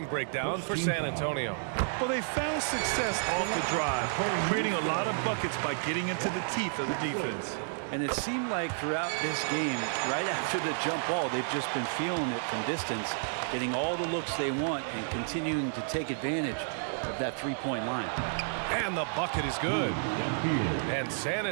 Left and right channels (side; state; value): left; silent; digital silence